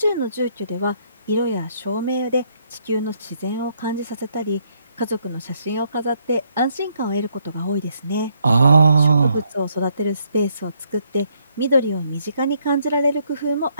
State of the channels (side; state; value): both; inverted; correlation -0.72